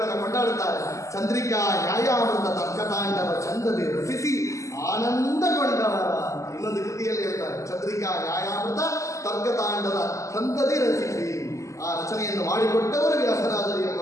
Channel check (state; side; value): late; right; 0.15 ms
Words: ಕೊಂಡಾಡುತ್ತಾರೆ. ಚಂದ್ರಿಕಾ, ನ್ಯಾಯಾಮೃತ, ತರ್ಕತಾಂಡವ ಚಂದದೆ ರಚಿಸಿ ಆನಂದಗೊಂಡವರ. ಇನ್ನೊಂದು ಕೃತಿಯಲ್ಲಿ ಹೇಳ್ತಾರೆ, ಚಂದ್ರಿಕಾ, ನ್ಯಾಯಾಮೃತ, ತರ್ಕತಾಂಡವ ಚಂದದೆ ರಚಿಸಿ. ಆ ರಚನೆಯನ್ನು ಮಾಡಿಕೊಟ್ಟವರು ವ್ಯಾಸರಾಜರು ಎಂಬ